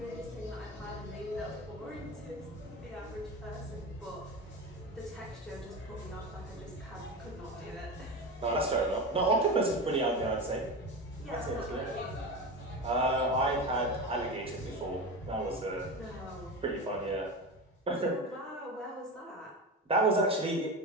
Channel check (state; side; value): normal; both; correlation 0.24